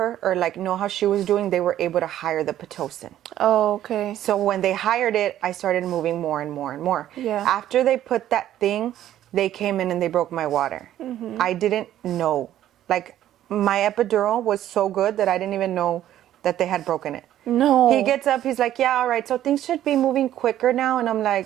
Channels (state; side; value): quieter; left; 12.2 dB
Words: or like know how she was doing, they were able to hire the Pitocin. Oh, okay. So when they hired it, I started moving more and more and more. Yeah. After they put that thing, they came in and they broke my water. I didn't know. Like, my epidural was so good that I didn't even know that they had broken it. No. He gets up, he's like, yeah, all right, so things should be moving quicker now. And I'm